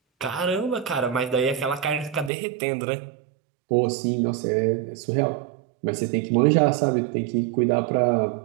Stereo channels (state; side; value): drops out; left; at 2.3 s